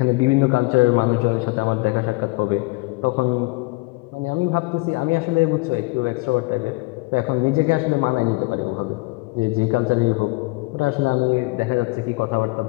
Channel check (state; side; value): quieter; right; 24.5 dB